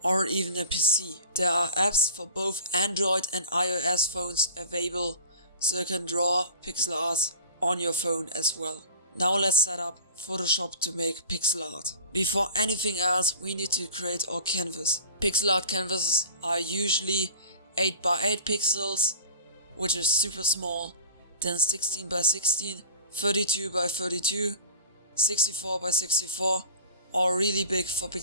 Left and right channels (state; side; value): inverted; both; correlation -0.39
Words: or even a PC. There are apps for both Android and iOS phones available, so you can draw pixel art on your phone as well. Now let's set up Photoshop to make pixel art. Before anything else, we need to create our canvas. Pixel art canvases are usually 8x8 pixels, which is super small, then 16x16, 32x32, 64x64, or really big for